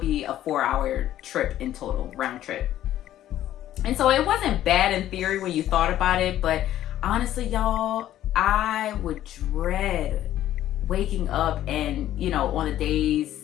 be a 4-hour trip in total, round trip. And so it wasn't bad in theory when you thought about it, but honestly, y'all, I would dread waking up and, on the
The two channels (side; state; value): right; quieter; 12.6 dB